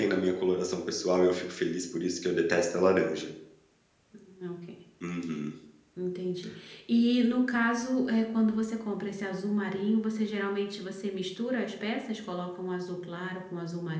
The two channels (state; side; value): identical; both; correlation 1.00